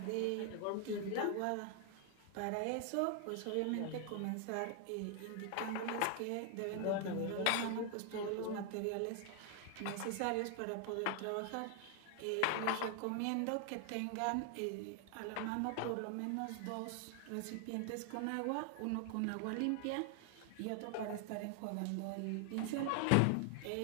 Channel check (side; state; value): both; different; correlation 0.00